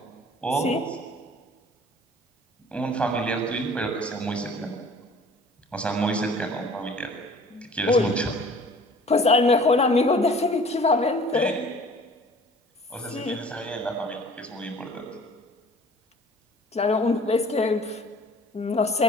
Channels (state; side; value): normal; both; correlation 0.49